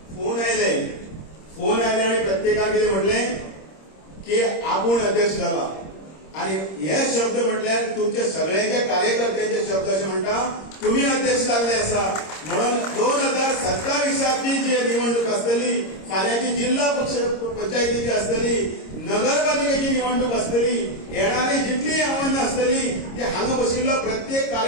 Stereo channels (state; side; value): late; right; 26 ms